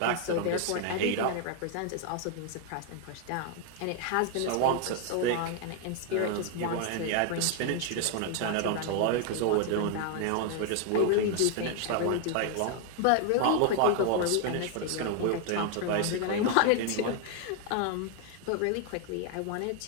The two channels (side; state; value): both; different; correlation 0.00